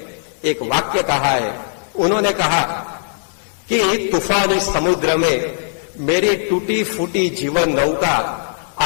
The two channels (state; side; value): silent; right; 55 dB below the other